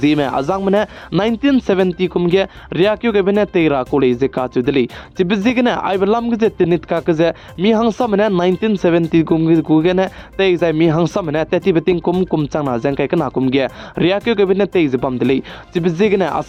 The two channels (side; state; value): both; identical; correlation 1.00